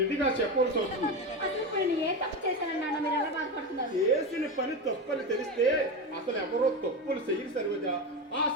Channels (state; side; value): normal; both; correlation 0.19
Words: చెప్పవలసి వస్తుంది. అసలు ఇప్పుడు నేను ఏ తప్పు చేశాను నాన్న, మీరు ఎలా బాధపడుతున్నారు? చేసిన పని తప్పని తెలిస్తే అసలు ఎవరో తప్పులు చెయ్యి సరివజ. ఆ